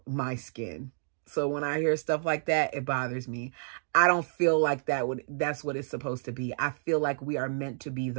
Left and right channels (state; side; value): silent; left; digital silence